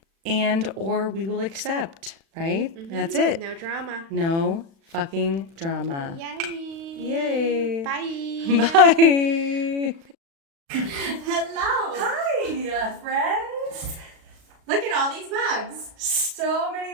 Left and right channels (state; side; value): late; left; 36 ms